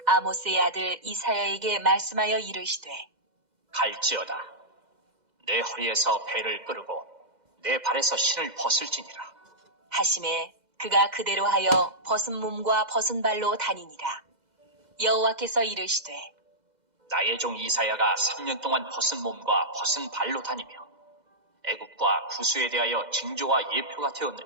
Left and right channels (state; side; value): late; left; 2.0 ms